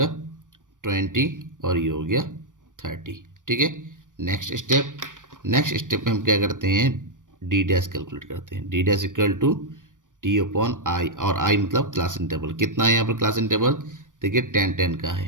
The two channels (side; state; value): left; late; 0.88 ms